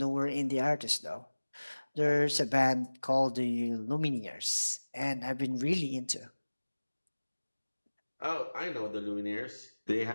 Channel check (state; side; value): inverted; both; correlation -1.00